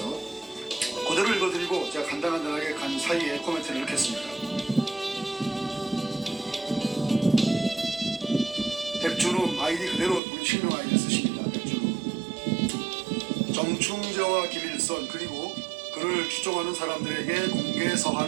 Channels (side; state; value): left; drops out; at 10.2 s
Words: 그대로 읽어드리고 제가 간단하게 간 사이에 코멘트를 넣겠습니다. 백준음 아이디 그대로 우리 실명 아이디 쓰십니다. 백준음. 정충재와 김일선 그리고 그를 추종하는 사람들에게 공개